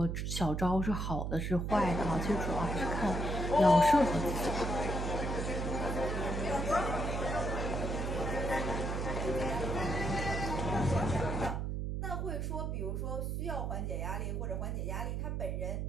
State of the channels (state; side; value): noise; right; hum, 1 dB below the sound